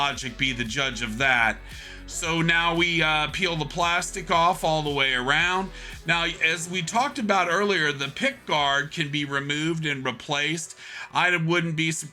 be the judge of that. So now we peel the plastic off all the way around. Now, as we talked about earlier, the pick guard can be removed and replaced. I wouldn't be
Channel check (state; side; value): identical; both; correlation 1.00